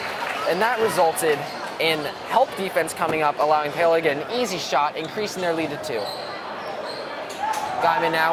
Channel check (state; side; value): identical; both; correlation 1.00